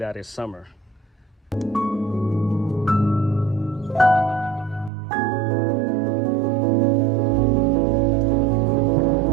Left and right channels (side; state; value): left; drops out; at 4.9 s